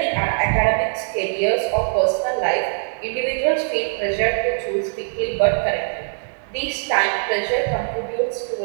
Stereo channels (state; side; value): silent; left; digital silence